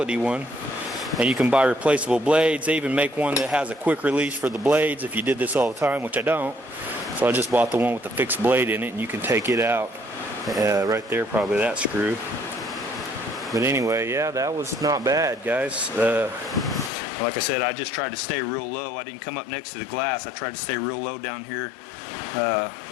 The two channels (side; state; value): right; drops out; at 16.9 s